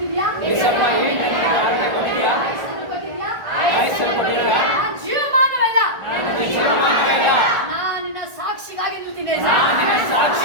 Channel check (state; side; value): late; left; 1.5 ms